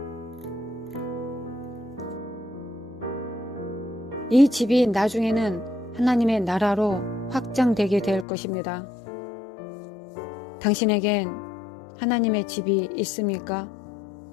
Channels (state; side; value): drops out; right; at 8.2 s